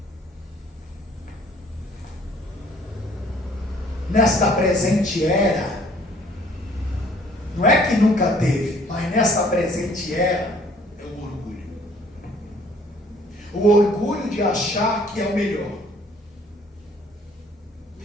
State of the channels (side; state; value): both; normal; correlation 0.57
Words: nesta presente era, não é que nunca teve, mas nesta presente era, é o orgulho. O orgulho de achar que é o melhor,